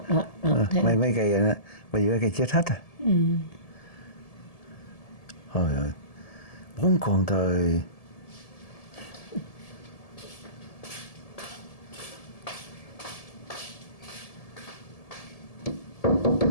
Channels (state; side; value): late; right; 1.7 ms